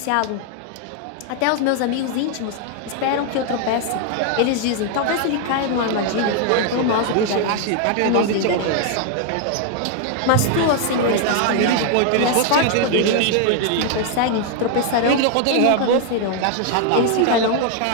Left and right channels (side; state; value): both; different; correlation 0.00